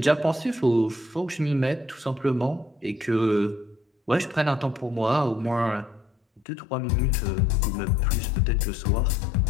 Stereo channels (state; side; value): drops out; right; at 6.5 s